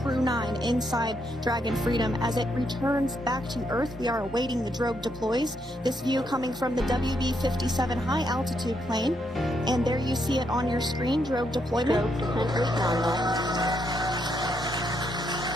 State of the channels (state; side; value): normal; both; correlation 0.77